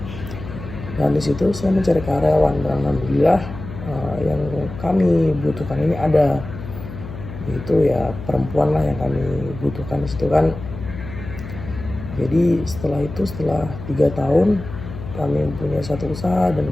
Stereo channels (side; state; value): left; noise; hum, 11 dB below the sound